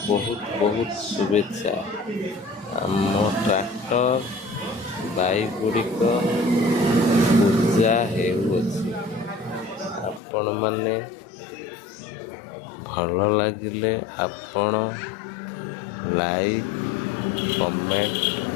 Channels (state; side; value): drops out; right; at 10.2 s